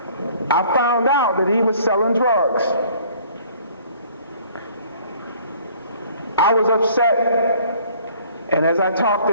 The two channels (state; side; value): inverted; both; correlation -0.55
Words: I found out that he was selling drugs. I was upset, and as I talked